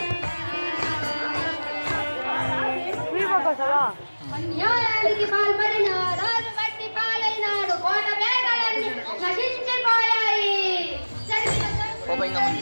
అన్యాయానికి పాల్పడిన రాజు బట్టి పాలైనాడు. కోట పేటలన్నీ నశించిపోయాయి. ఇంకా ముందు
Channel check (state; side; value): inverted; both; correlation -1.00